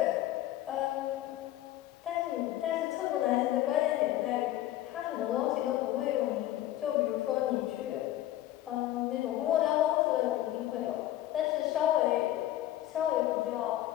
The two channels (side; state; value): right; quieter; 14.0 dB